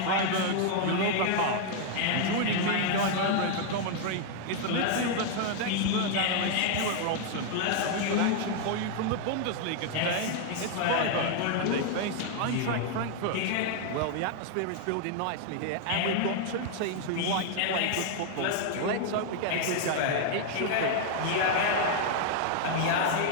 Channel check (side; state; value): both; different; correlation 0.00